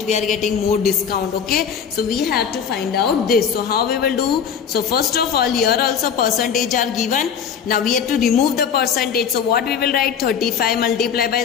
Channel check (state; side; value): quieter; right; 7.3 dB